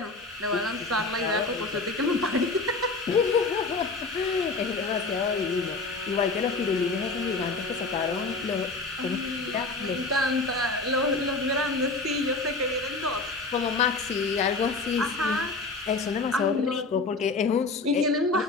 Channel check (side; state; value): right; quieter; 3.6 dB